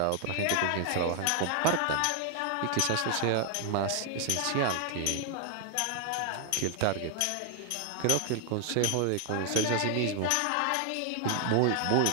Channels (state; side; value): different; both; correlation 0.00